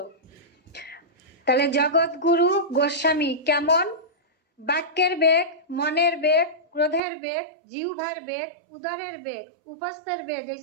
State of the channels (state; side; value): drops out; left; at 7.0 s